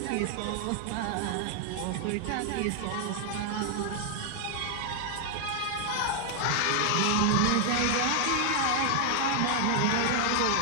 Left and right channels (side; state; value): both; different; correlation 0.00